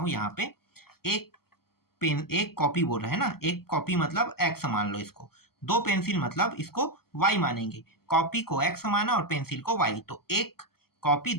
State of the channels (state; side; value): late; right; 0.95 ms